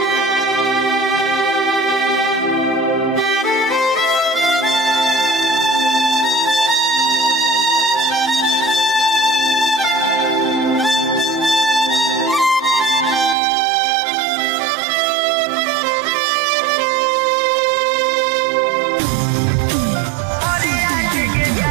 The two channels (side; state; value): left; drops out; at 13.4 s